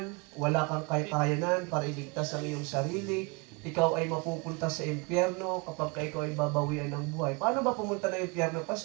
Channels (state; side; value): quieter; left; 29.0 dB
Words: wala kang kakayanan para iligtas ang iyong sarili, ikaw ay mapupunta sa impyerno kapag ikaw ay babawian ng buhay. Paano ba pumunta ng impyerno,